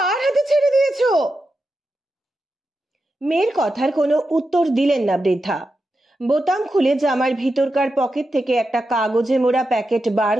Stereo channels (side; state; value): both; normal; correlation 0.89